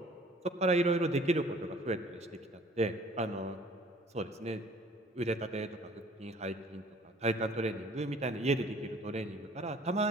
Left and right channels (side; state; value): both; normal; correlation 0.53